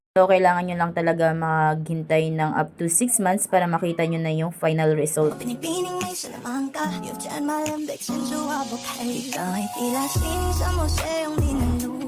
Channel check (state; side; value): identical; both; correlation 1.00